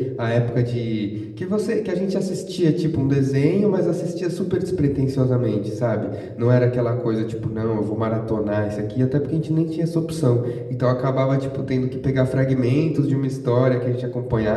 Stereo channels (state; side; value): identical; both; correlation 1.00